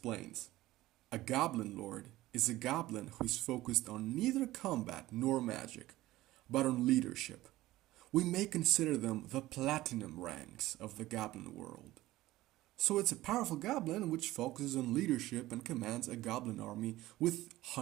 a Goblin Lord is a goblin who is focused on neither combat nor magic, but on leadership. We may consider them the platinum ranks of the goblin world. So it's a powerful goblin which focuses on leadership and commands a goblin army with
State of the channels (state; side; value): quieter; left; 16.7 dB